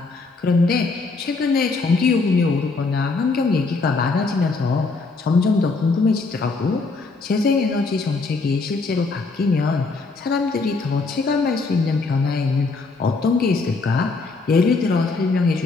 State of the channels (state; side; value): quieter; right; 3.9 dB